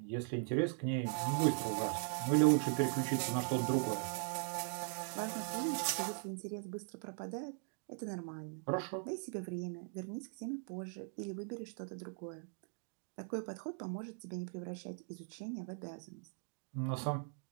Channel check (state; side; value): silent; left; 51 dB below the other